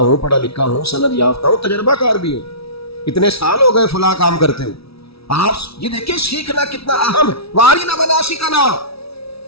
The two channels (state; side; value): late; right; 0.76 ms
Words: پڑھا لکھا ہوں، سند یافتہ ہوں، تجربہ کار بھی ہوں، اتنے سال ہو گئے فلاں کام کرتے ہوں۔ آپ یہ دیکھیں سیکھنا کتنا اہم ہے۔ وَأَرِنَا مَنَاسِكَنَا،